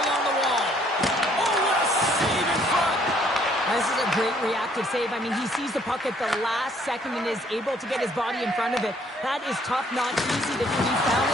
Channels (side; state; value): both; normal; correlation 0.64